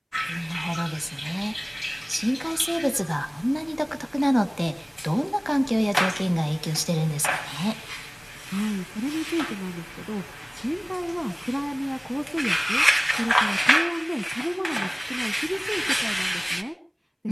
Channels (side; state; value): both; identical; correlation 1.00